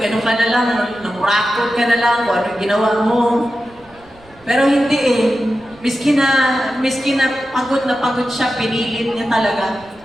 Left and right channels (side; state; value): right; noise; rumble, 28 dB below the sound